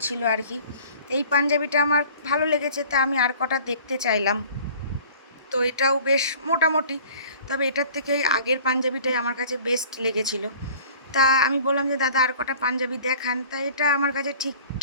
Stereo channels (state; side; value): inverted; both; correlation -0.47